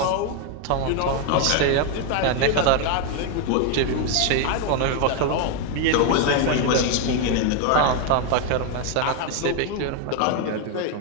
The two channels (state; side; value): different; both; correlation 0.01